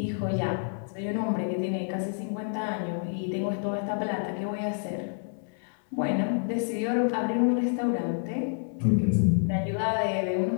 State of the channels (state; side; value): silent; right; 59 dB below the other